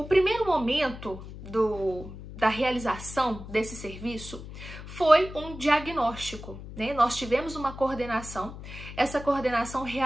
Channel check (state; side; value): noise; left; hum, 12 dB below the sound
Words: primeiro momento da realização desse serviço foi um diagnóstico, Nós tivemos uma coordenação, essa coordenação